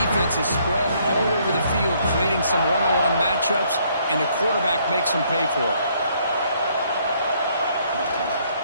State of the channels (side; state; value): both; inverted; correlation -0.67